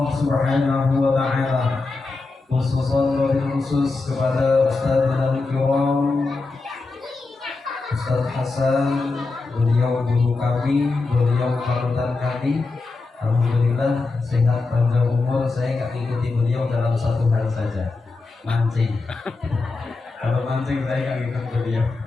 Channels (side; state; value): right; quieter; 3.7 dB